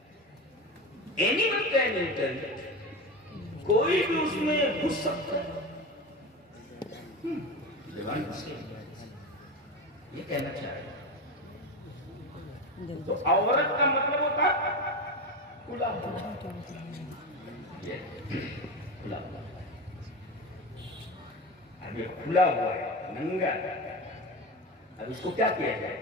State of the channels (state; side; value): normal; both; correlation 0.22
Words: اینیمل کین انٹر، کوئی بھی اس میں گھس سکتا ہے۔ یہ کہنا چاہ رہے ہیں تو عورت کا مطلب ہوتا کھلا ہوا، کھلا ہوا۔ اب یہ کھلا ہوا ہے، ننگا، اب اس کو کیا کیا جائے؟